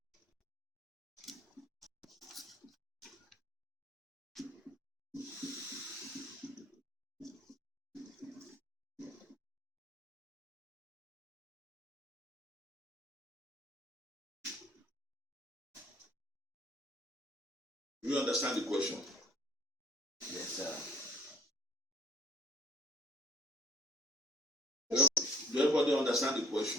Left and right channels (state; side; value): normal; both; correlation 0.58